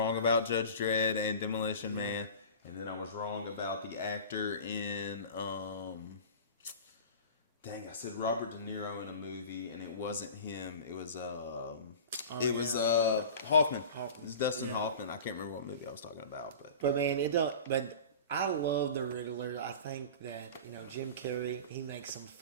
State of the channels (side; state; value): both; inverted; correlation -0.36